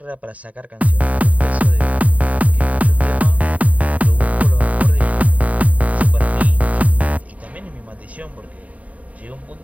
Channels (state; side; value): late; left; 0.070 ms